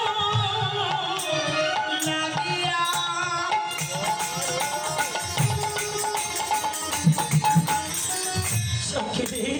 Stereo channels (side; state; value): both; identical; correlation 1.00